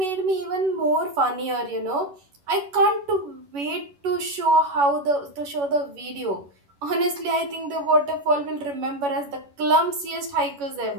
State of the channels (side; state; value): left; late; 11 ms